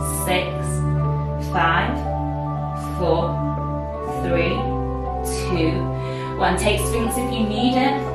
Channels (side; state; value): both; identical; correlation 1.00